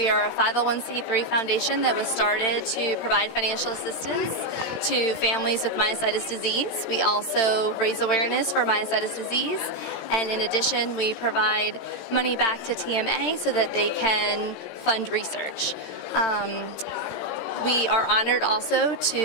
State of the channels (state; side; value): late; right; 17 ms